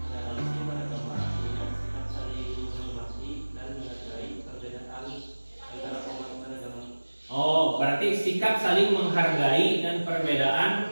Toleransi beragama artinya sikap saling menghormati dan menghargai perbedaan antara umat beragama. Oh, berarti sikap saling menghargai dan perbedaan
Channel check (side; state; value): both; inverted; correlation -1.00